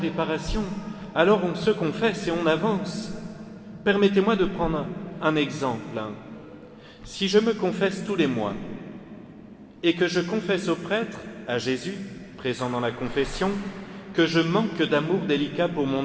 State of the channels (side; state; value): both; identical; correlation 1.00